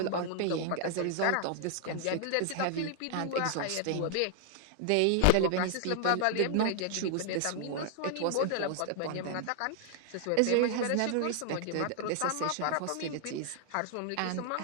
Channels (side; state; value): both; different; correlation 0.00